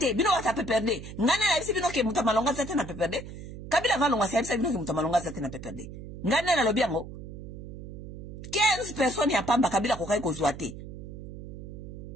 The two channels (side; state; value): right; noise; hum, 12 dB below the sound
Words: bino wata PPRD. Ngane la bisi bino ke mutu ya malonga azate na PPRD. Kabila valonga sa bisi bino ke mutu ya malonga azate na PPRD. Ngane na lobi yango 15 personnes ya pamba Kabila kokai kozwa te.